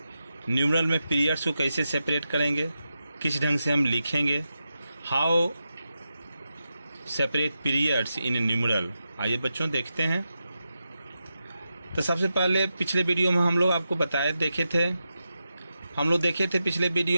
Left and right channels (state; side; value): inverted; both; correlation -0.89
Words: Numeral में periods को कैसे separate करेंगे, किस ढंग से हम लिखेंगे, how separate periods in A numeral. आइए बच्चों देखते हैं। तो सबसे पहले पिछले वीडियो में हम लोग आपको देखे थे पिछले